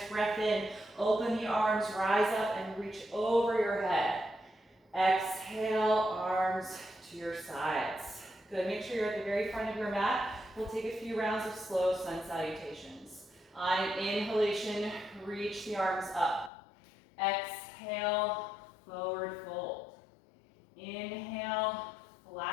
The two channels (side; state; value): right; drops out; at 16.5 s